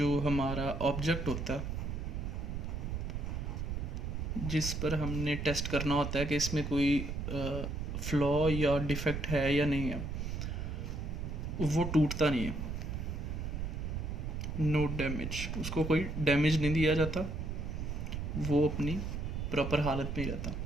हमारा ऑब्जेक्ट होता है जिस पर हमने टेस्ट करना होता है कि इसमें कोई फ्लॉ या डिफेक्ट है या नहीं है, वो टूटता नहीं है। नो डैमेज, उसको कोई डैमेज नहीं दिया जाता, वो अपनी प्रॉपर हालत में ही रहता।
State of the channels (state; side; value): noise; right; rumble, 3 dB below the sound